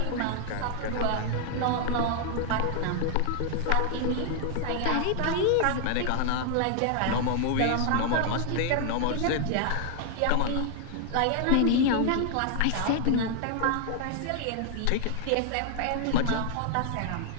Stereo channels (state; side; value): different; both; correlation 0.00